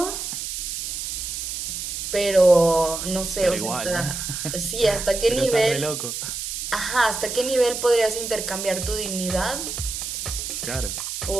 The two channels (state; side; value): noise; right; hiss, 5 dB below the sound